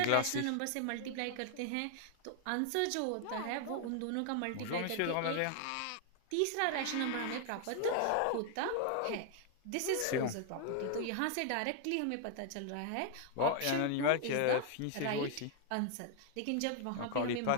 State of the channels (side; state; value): both; different; correlation 0.00